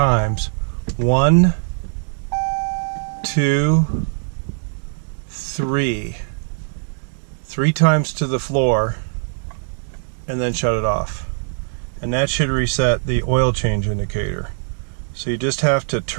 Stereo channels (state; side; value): silent; left; 65 dB below the other